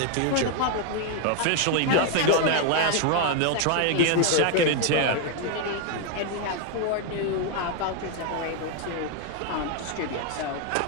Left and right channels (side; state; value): both; different; correlation 0.01